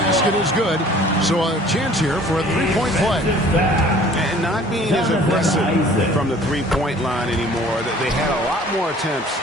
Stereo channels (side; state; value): both; normal; correlation 0.51